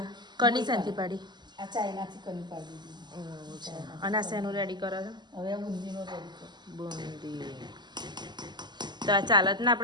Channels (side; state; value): left; late; 0.21 ms